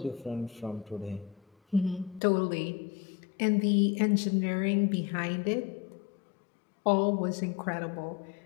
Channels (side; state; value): right; drops out; at 2.2 s